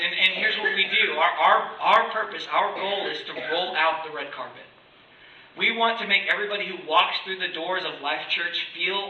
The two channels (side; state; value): both; identical; correlation 1.00